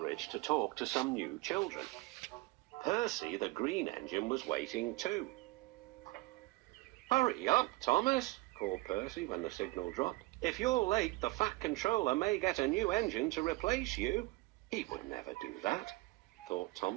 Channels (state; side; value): quieter; left; 21.4 dB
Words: to talk to some new children. Percy, the green engine, was waiting too. "Hurry up, Thomas," called Percy when the signal dropped. "If you're late, the Fat Controller may get a new engine to replace you." He would never do that, thought